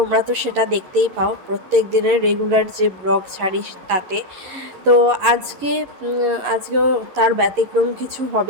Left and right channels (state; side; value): late; left; 11 ms